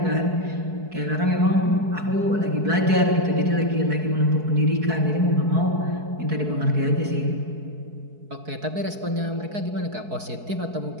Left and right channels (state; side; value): late; left; 4.6 ms